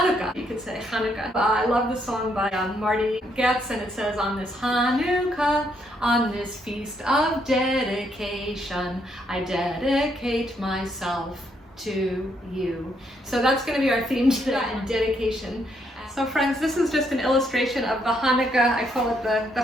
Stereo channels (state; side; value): normal; both; correlation 0.74